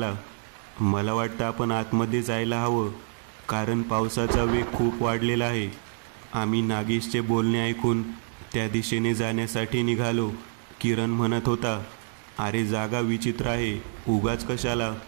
मला वाटतं आपण आतमध्ये जायला हवं, कारण पावसाचा वेग खूप वाढलेला आहे. आम्ही नागेशचे बोलणे ऐकून त्या दिशेने जाण्यासाठी निघालो. किरण म्हणत होता, अरे जागा विचित्र आहे, उगाच कशाला?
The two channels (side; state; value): left; silent; 60 dB below the other